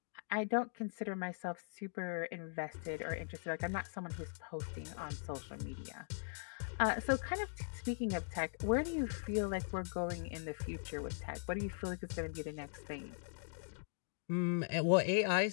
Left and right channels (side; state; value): right; silent; digital silence